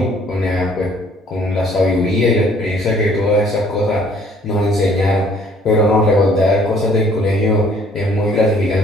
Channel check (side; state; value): both; normal; correlation 0.59